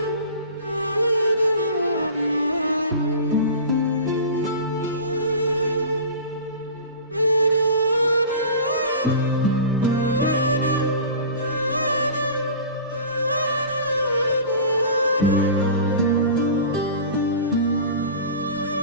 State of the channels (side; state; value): both; inverted; correlation -0.37